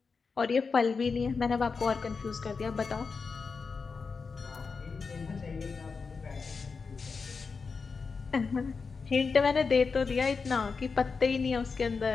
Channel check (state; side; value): quieter; right; 4.9 dB